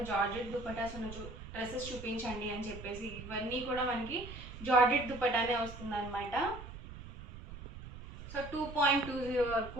జార్జెట్ దుప్పటాస్ ఉన్న డ్రెస్సెస్ చూపించండి అని చెప్పేసి. ఇవన్నీ కూడా మనకి జార్జెట్ దుప్పటానే వస్తుంది అనమాట. సో 2.20 వరకు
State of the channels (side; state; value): right; noise; rumble, 12 dB below the sound